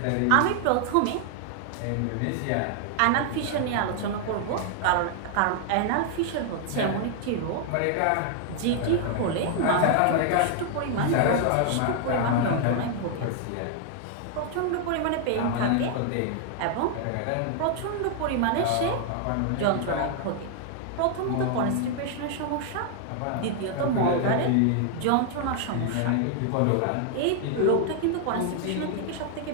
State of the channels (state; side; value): different; both; correlation 0.00